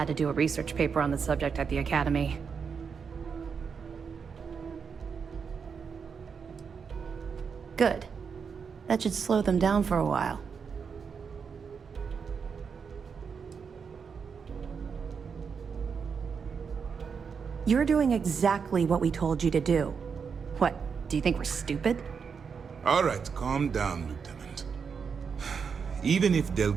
to do a research paper on the subject at the Academy. Good. That should slow them down for a while. You're doing exactly what we told you to do. What, do you think we're stupid? All right, calm down, Lieutenant. Even if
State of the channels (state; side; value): quieter; left; 6.1 dB